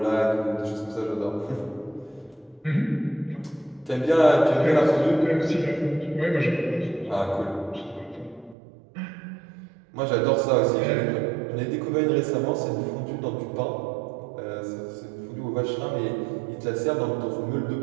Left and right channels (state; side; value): drops out; left; at 8.6 s